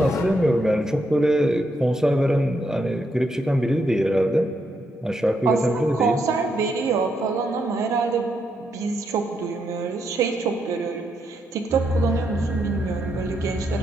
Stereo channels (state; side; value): normal; both; correlation 0.79